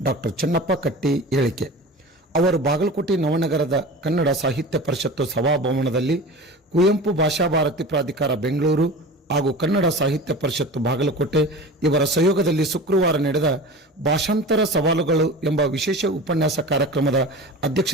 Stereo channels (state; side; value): normal; both; correlation 0.34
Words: ಡಾಕ್ಟರ್ ಚೆನ್ನಪ್ಪ ಕಟ್ಟಿ ಹೇಳಿಕೆ. ಅವರು ಬಾಗಲಕೋಟೆ ನವನಗರದ ಕನ್ನಡ ಸಾಹಿತ್ಯ ಪರಿಷತ್ತು ಸಭಾಭವನದಲ್ಲಿ ಕುವೆಂಪು ಭಾಷಾ ಭಾರತಿ ಪ್ರಾಧಿಕಾರ ಬೆಂಗಳೂರು ಹಾಗೂ ಕನ್ನಡ ಸಾಹಿತ್ಯ ಪರಿಷತ್ತು ಬಾಗಲಕೋಟೆ ಇವರ ಸಹಯೋಗದಲ್ಲಿ ಶುಕ್ರವಾರ ನಡೆದ ಭಾಷಾಂತರ ಸವಾಲುಗಳು ಎಂಬ ವಿಶೇಷ ಉಪನ್ಯಾಸ ಕಾರ್ಯಕ್ರಮದ